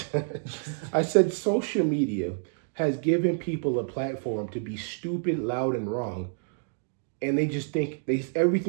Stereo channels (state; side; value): silent; left; digital silence